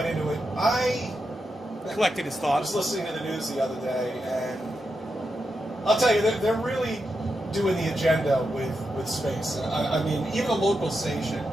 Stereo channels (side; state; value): both; normal; correlation 0.86